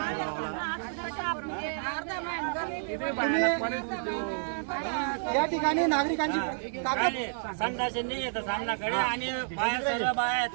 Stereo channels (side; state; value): left; silent; digital silence